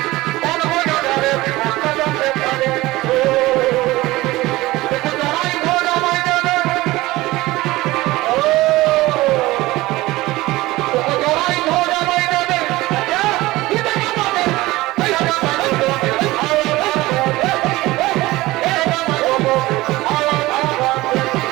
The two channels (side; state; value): left; quieter; 18.9 dB